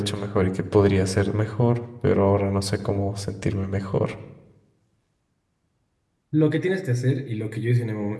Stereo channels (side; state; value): both; identical; correlation 1.00